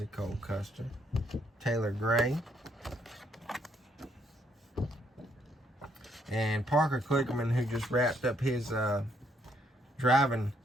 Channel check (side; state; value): both; normal; correlation 0.71